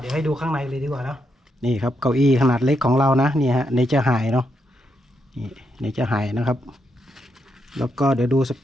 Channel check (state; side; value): normal; both; correlation 0.81